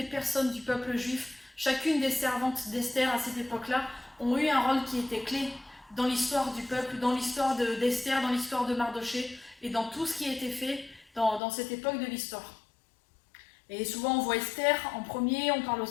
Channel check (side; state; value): right; drops out; at 11.4 s